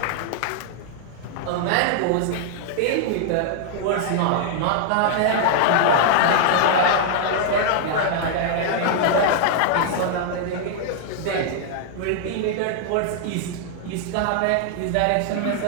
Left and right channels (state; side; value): different; both; correlation -0.01